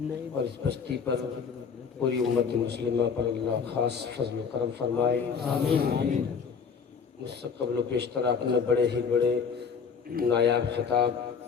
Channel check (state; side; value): quieter; right; 6.1 dB